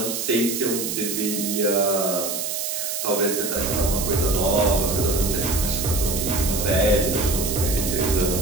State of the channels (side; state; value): right; noise; hiss, 3 dB below the sound